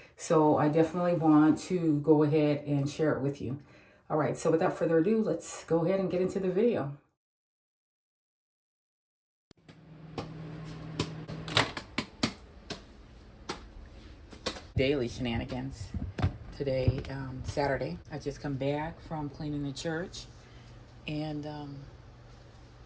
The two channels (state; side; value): identical; both; correlation 1.00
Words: So I definitely want to go ahead and share it with you. All right. So without further ado, let's go ahead and get into the video. Daily shenanigans. Today, Saturday, I just come back from cleaning the church and kind